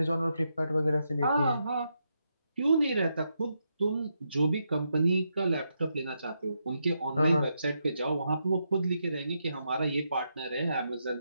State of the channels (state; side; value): inverted; both; correlation -0.83